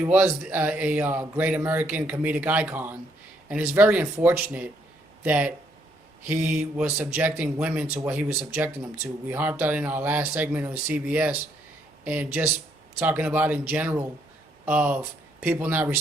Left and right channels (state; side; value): normal; both; correlation 0.71